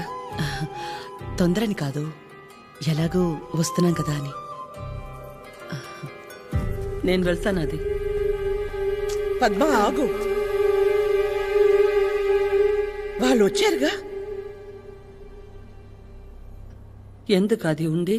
తొందరని కాదు, ఎలాగూ వస్తున్నాం కదా అని. నేను వెళ్తాను. అది పద్మ, ఆగు. వాళ్ళు వచ్చారుగా. ఎందుకు అది ఉండి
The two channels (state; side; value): identical; both; correlation 1.00